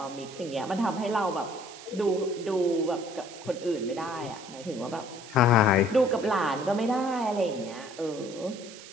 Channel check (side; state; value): right; noise; hiss, 16 dB below the sound